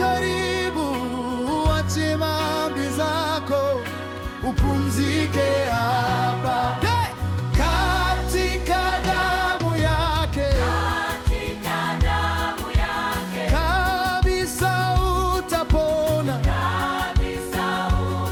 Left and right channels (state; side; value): identical; both; correlation 1.00